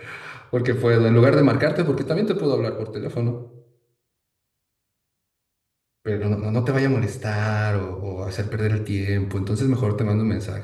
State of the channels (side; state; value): both; identical; correlation 1.00